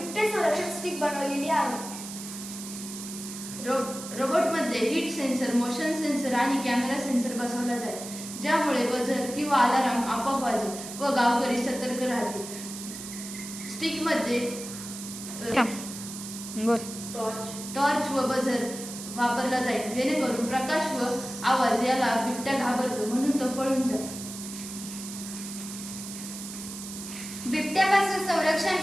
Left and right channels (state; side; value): noise; right; hiss, 10 dB below the sound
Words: संरक्षण स्टिक बनवलेली आहे. रोबोटमध्ये हीट सेन्सर, मोशन सेन्सर आणि कॅमेरा सेन्सर बसवला जाईल, ज्यामुळे बझर किंवा अलार्म आपोआप वाजेल व गावकरी सतर्क राहतील. स्टिकमध्ये टॉर्च व बझर वापरला जाईल, जेणेकरून प्रकाश व आवाज याला बिबट्या घाबरतो, म्हणून तो पळून जातो. बिबट्यापासून संरक्षण